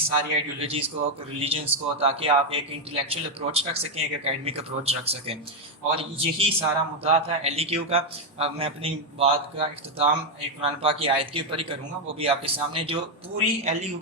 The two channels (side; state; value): both; normal; correlation 0.04